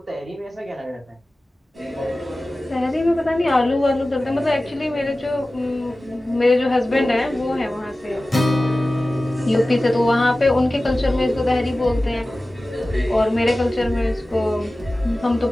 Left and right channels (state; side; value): normal; both; correlation 0.96